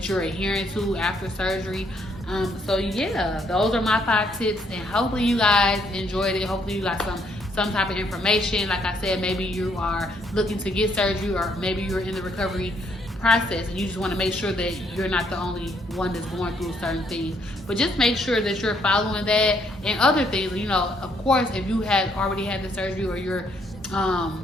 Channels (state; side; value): normal; both; correlation 0.70